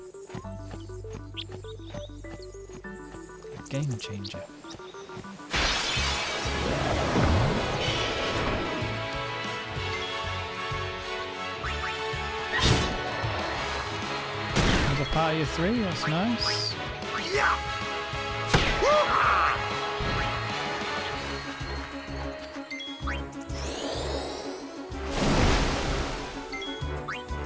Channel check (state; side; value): identical; both; correlation 1.00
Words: A game changer. There's a party of 3, that's nice. Yeah.